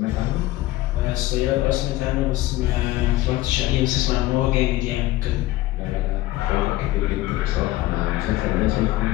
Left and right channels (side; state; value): right; quieter; 16.9 dB